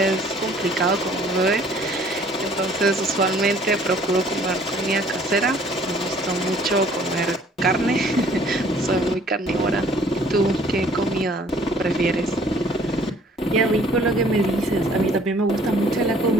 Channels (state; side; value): normal; both; correlation 0.57